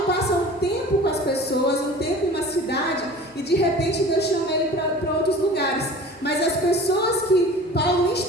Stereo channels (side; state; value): both; normal; correlation 0.41